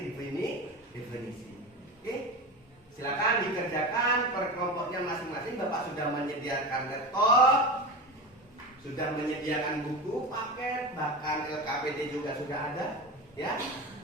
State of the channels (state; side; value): normal; both; correlation 0.25